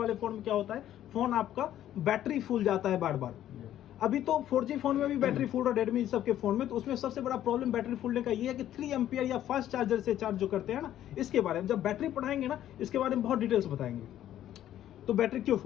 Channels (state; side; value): quieter; right; 11.9 dB